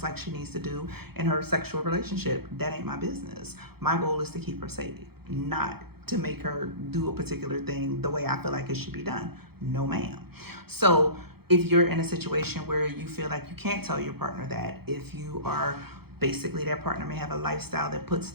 like she needs to do in her sexual relationship. That ain't my business. My goal is to keep her safe, not to make her do a particular thing the way I feel like it should be done. No, ma'am. So if you're in a situation where you feel like you can't tell your partner that, if you are basically, that partner may have a lifestyle that puts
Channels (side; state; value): left; late; 0.96 ms